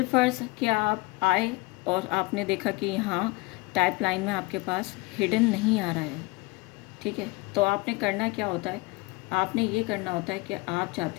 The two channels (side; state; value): right; quieter; 23.9 dB